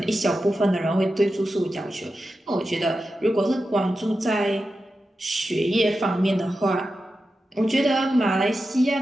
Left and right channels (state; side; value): normal; both; correlation 0.91